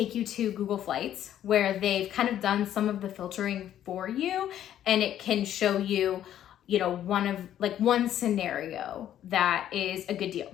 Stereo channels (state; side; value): quieter; right; 11.2 dB